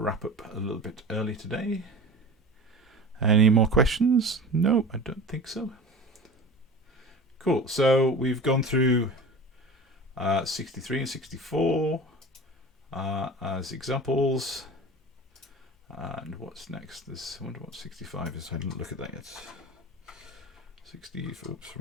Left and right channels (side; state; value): both; normal; correlation 0.36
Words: up a little bit early today. Any more questions? No, I don't think so. Cool. So we've gone through 63 and 64 as examples. And what's next? I wonder what 65 is. I didn't look at that yet. 60, oops,